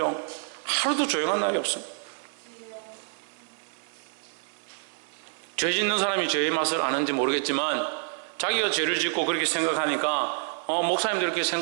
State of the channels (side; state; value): left; silent; 57 dB below the other